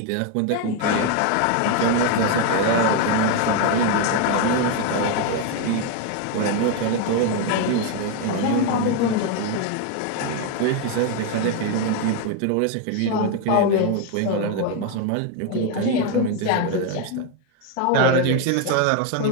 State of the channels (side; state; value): both; different; correlation 0.01